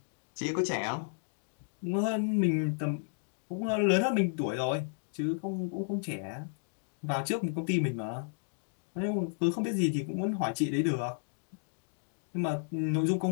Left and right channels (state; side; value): silent; right; digital silence